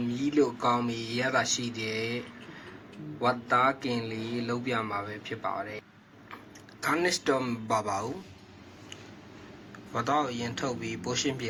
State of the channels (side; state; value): both; identical; correlation 1.00